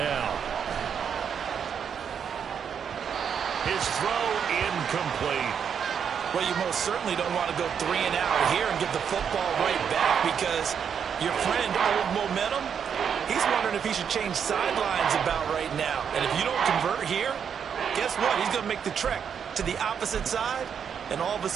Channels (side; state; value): left; quieter; 7.5 dB